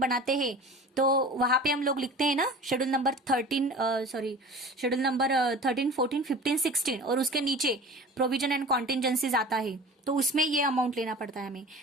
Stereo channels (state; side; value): normal; both; correlation 0.39